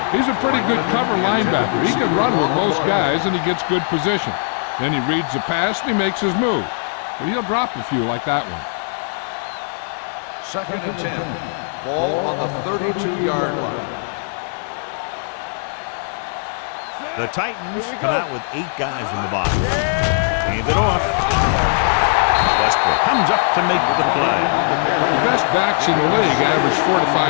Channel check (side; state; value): right; silent; digital silence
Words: He's a pretty good cover linebacker. He can run with most guys, and he gets good position. Then he reads the pass, and he makes his move. But he'll drop a few like that one. 2nd and 10. Ball on the 32-yard line. Watch the snap down. The Titans come out with 8 guys in the box. Hand it off. Westbrook comes up to make the play. The best backs in the league average 4 to